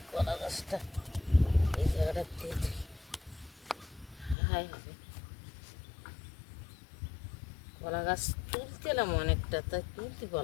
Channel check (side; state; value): right; drops out; at 4.4 s